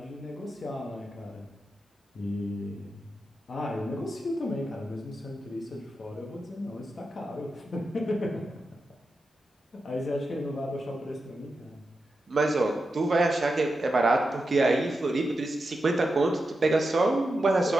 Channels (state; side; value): normal; both; correlation 0.89